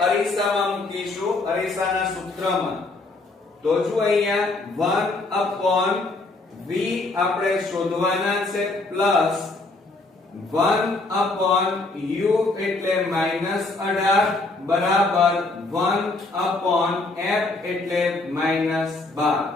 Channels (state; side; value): quieter; right; 3.2 dB